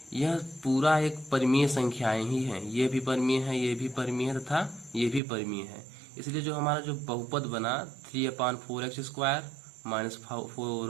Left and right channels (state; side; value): drops out; left; at 5.2 s